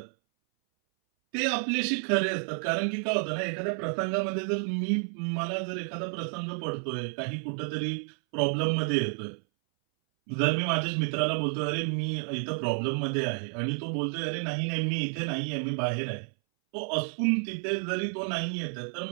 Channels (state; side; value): silent; left; 58 dB below the other